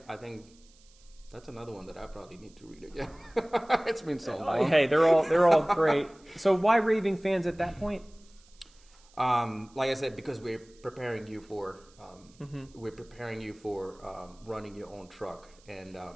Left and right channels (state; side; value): noise; right; hiss, 28 dB below the sound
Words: think that's another one that I probably need to read again. It's been so long. Hey, they're all great. So why Raving Fans at that point? Like I said, because we're preparing you for running your own truck, and